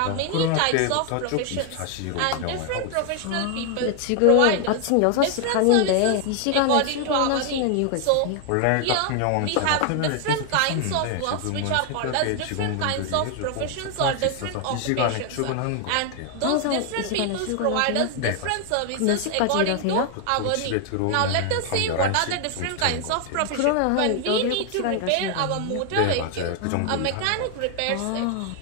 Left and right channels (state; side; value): different; both; correlation 0.00